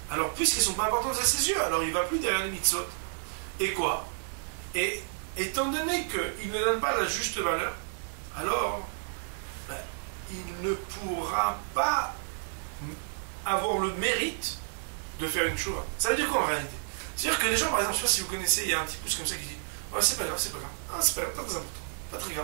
Alors, puisqu'elles ne sont pas importantes à ses yeux, alors il ne va plus derrière les mitzvot. Et quoi? Et étant donné qu'il ne donne pas la juste valeur, alors il ne pourra pas avoir le mérite de faire une tshuva. Ça veut dire quoi en réalité? C'est-à-dire que les gens, par exemple, je ne sais pas si vous connaissez, il y a un petit pouce comme ça qui dit ouais, c'est pas grave, c'est pas grave. Ah, c'est pas grave, pas très important, pas très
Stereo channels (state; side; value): silent; left; 57 dB below the other